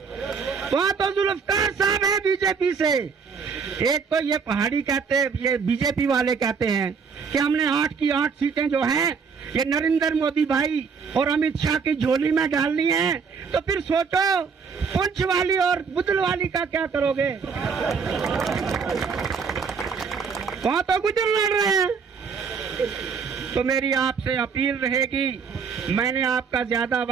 वहाँ तो जुल्फकार साहब है बीजेपी से। एक तो ये पहाड़ी कहते हैं, ये बीजेपी वाले कहते हैं कि हमने 8 की 8 सीटें जो हैं ये नरेंद्र मोदी भाई और अमित शाह की झोली में डालनी है। तो फिर सोचो पुंछ वाली और बुदल वाली का क्या करोगे? वहाँ तो गुजर लड़ रहे हैं। तो मेरी आपसे अपील रहेगी, मैंने आपका ज्यादा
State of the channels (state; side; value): quieter; left; 5.8 dB